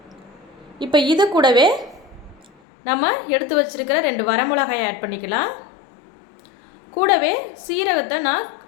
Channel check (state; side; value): drops out; right; at 2.5 s